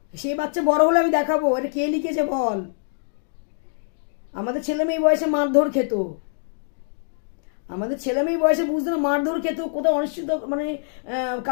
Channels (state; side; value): silent; right; digital silence